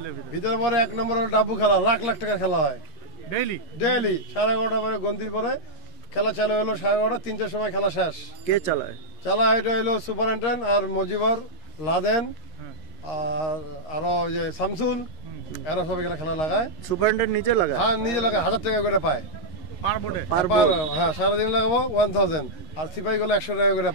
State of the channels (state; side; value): late; right; 11 ms